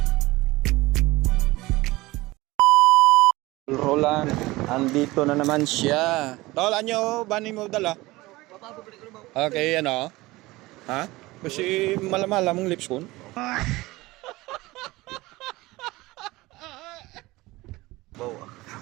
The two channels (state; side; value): quieter; left; 20.1 dB